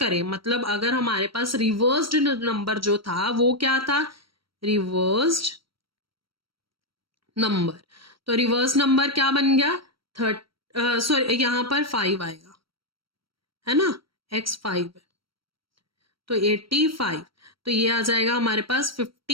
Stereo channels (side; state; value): left; late; 0.74 ms